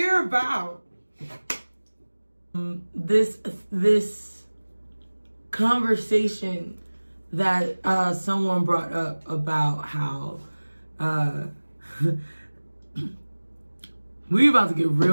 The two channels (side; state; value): both; inverted; correlation -1.00